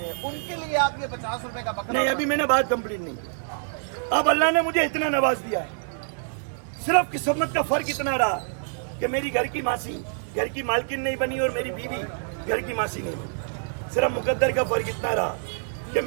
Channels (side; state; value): left; silent; digital silence